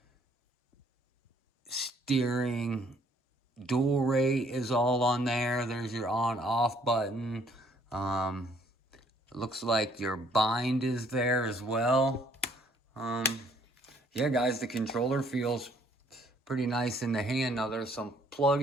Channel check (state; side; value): normal; both; correlation 0.63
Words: steering dual rate is all on there. There's your on-off button. It looks like your bind is there as well. Yeah, guys, the controller feels pretty nice in the hand. Now there's some